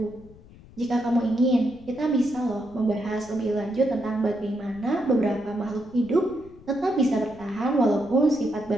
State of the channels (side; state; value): left; noise; rumble, 22 dB below the sound